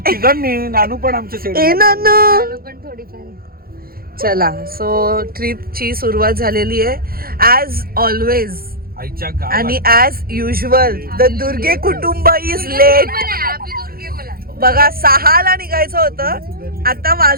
तिघांनी. नानू पण आमच्या सेट. चला सो ट्रिपची सुरुवात झालेली आहे ॲज ऑलवेज आणि ॲज युजल. द दुर्गे कुटुंब इज लेट. बघा 6ला निघायचं होतं. आता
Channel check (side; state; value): left; late; 0.43 ms